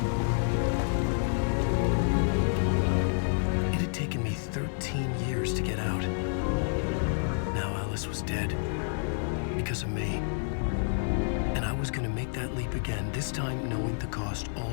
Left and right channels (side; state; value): right; silent; digital silence